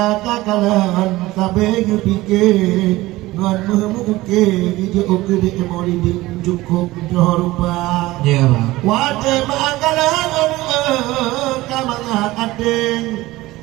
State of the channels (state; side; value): quieter; left; 18.4 dB